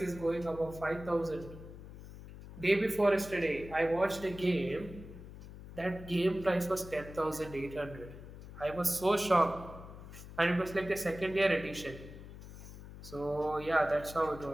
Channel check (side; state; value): left; noise; hum, 14 dB below the sound